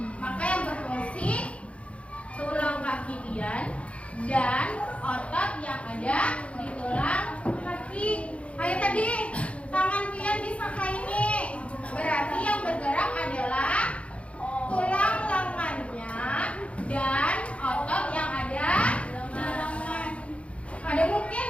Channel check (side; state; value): right; late; 0.062 ms